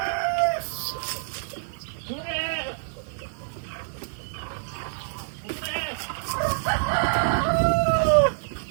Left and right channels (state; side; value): silent; left; 60 dB below the other